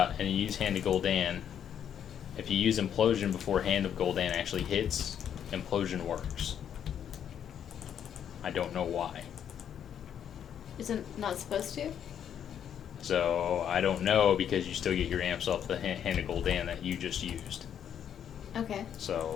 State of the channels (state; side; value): quieter; right; 9.1 dB